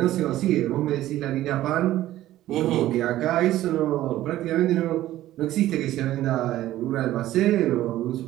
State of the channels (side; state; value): left; quieter; 14.4 dB